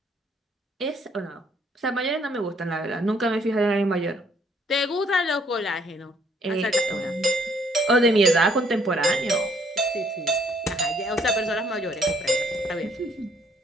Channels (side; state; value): both; normal; correlation 0.66